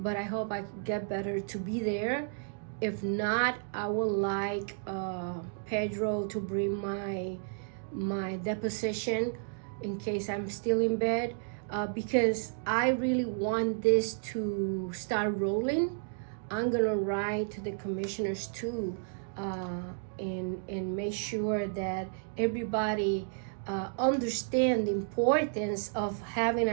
I hope I get better to be there. If not, I would like Pedro to bring my deposition in case I'm still in bed, because I really want this to start rolling. I'm gonna write to the commissioners too, and make sure that everybody understand the importance of having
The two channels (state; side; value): silent; left; digital silence